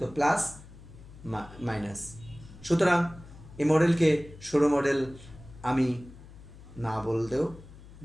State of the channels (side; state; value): left; noise; hum, 18 dB below the sound